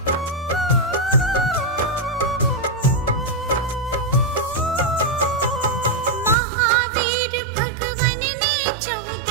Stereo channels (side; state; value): left; drops out; at 6.4 s